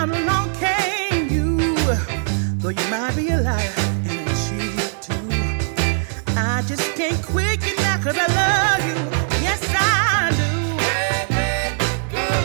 along came you. Though you might be a liar and a cheat too, I just can't quit you now, 'cause I love you. Yes, I do.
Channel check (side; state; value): left; silent; digital silence